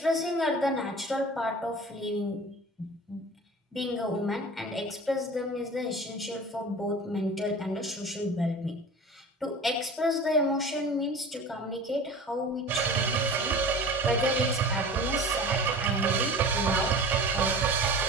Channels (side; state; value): both; normal; correlation 0.38